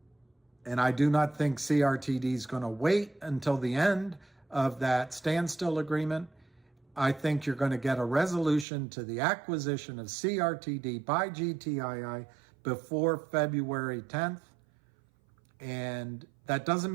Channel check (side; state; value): left; drops out; at 8.7 s